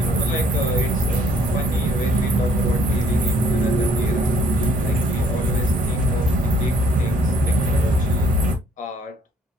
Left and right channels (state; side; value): normal; both; correlation 0.62